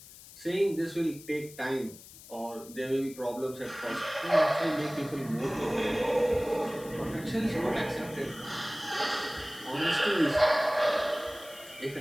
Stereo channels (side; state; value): left; noise; hiss, 18 dB below the sound